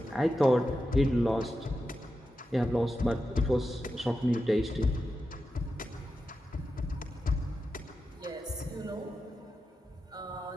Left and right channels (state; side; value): normal; both; correlation 0.90